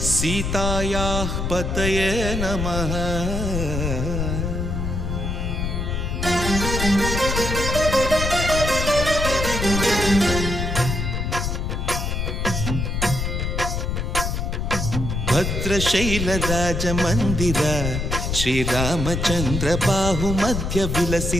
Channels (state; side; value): noise; left; rumble, 2 dB below the sound